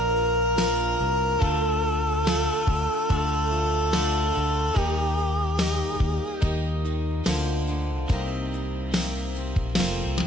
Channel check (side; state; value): both; normal; correlation 0.66